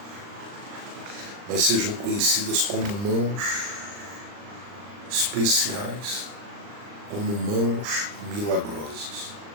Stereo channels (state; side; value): late; left; 39 ms